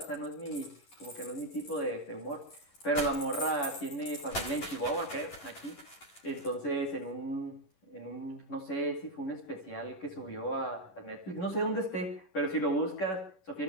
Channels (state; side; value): late; right; 11 ms